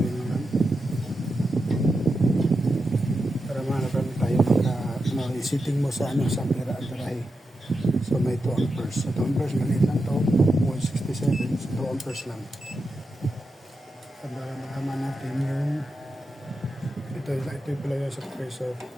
naman. Para malaman tayo sitting mo sa ano, sa pera at barahe. So may 2 amperes. Sa 2 amperes, maliit lang to. 167. So 2 amperes lang. Para malaman natin yung ito yung pala sa compressor.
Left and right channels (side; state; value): both; normal; correlation 0.88